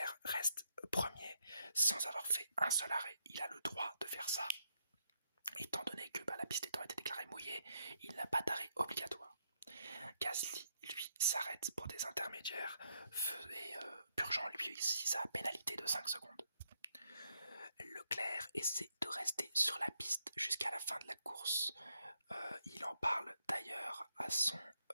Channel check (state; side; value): inverted; both; correlation -0.77